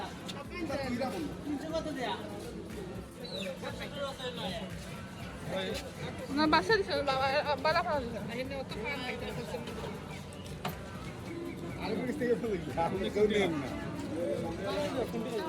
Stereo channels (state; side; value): identical; both; correlation 1.00